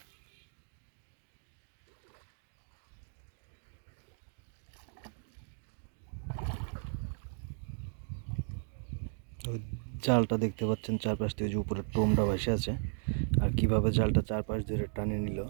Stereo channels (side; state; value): left; silent; 54 dB below the other